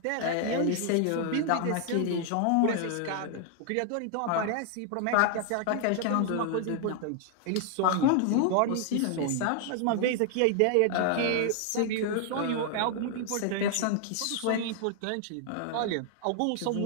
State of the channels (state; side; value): different; both; correlation 0.00